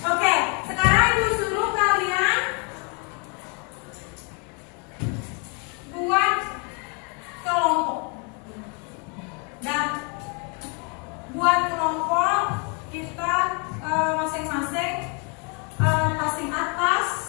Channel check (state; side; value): quieter; right; 35.6 dB